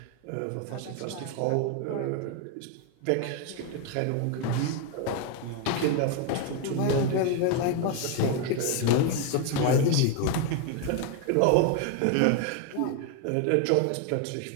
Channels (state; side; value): different; both; correlation 0.01